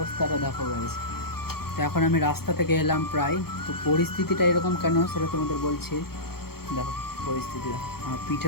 দেখো গাইস। তো এখন আমি রাস্তা থেকে এলাম প্রায়, তো পরিস্থিতিটা এরকম কেন সেটা তোমাদের বলছি। দেখো পরিস্থিতি, দেখো আমার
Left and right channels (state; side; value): late; right; 0.94 ms